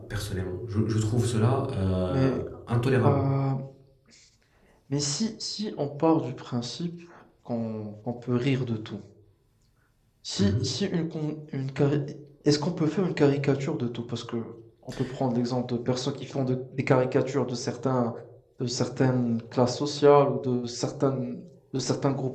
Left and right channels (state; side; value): identical; both; correlation 1.00